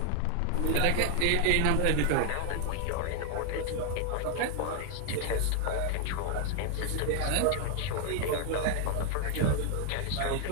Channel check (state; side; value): different; both; correlation 0.00